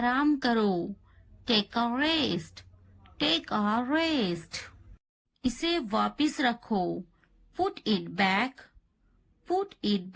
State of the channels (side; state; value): both; identical; correlation 1.00